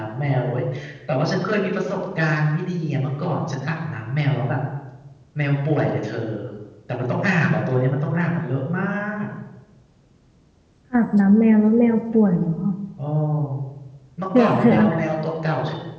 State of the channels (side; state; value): both; identical; correlation 1.00